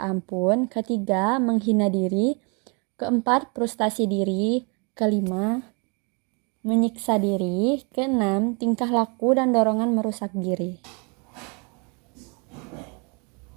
ampun. 3. Menghina diri. 4. Frustasi diri. 5. menyiksa diri. Keenam, tingkah laku dan dorongan merusak diri.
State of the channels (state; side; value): quieter; left; 33.2 dB